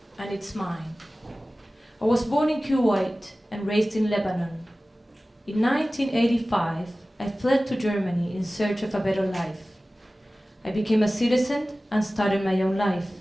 and it's mine. I was born in Kuwait and raised in Lebanon. In 1985, I fled to Germany in search of a better life. I became a citizen and started my own life.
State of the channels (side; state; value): both; normal; correlation 0.97